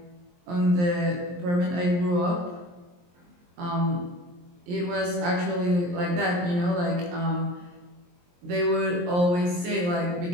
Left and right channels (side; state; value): left; late; 23 ms